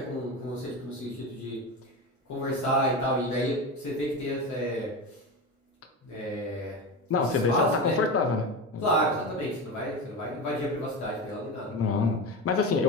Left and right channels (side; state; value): both; normal; correlation 0.22